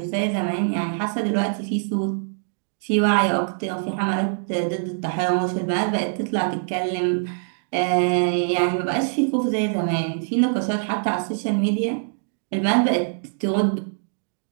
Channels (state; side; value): silent; left; digital silence